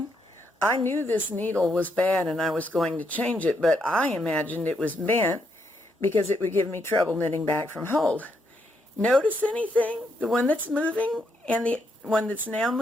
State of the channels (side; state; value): both; normal; correlation 0.77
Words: I knew this needle was bad and I was going to change it, but I imagined it was bent because it would give me trouble knitting back from hold. Notice anything? The one that's moving and the one that's now